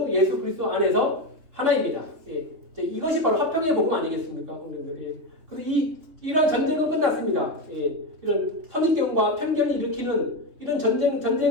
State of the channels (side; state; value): left; late; 3.2 ms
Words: 예수 그리스도 안에서 하나입니다. 이것이 바로 화평의 복음 아니겠습니까? 그래서 이런 전쟁은 끝났습니다. 이런 선입견과 편견을 일으키는 이런